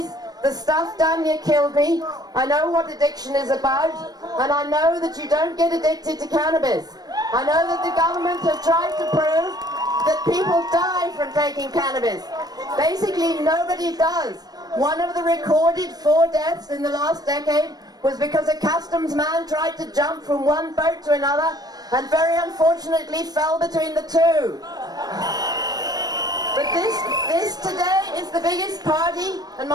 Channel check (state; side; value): late; left; 0.19 ms